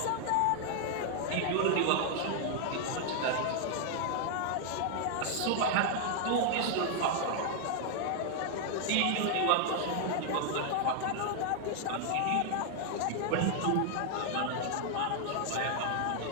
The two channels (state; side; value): different; both; correlation 0.00